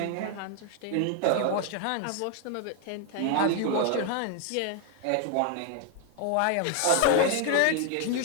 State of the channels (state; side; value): different; both; correlation 0.01